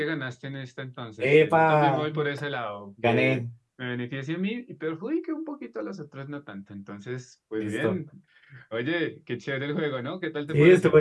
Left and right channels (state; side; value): identical; both; correlation 1.00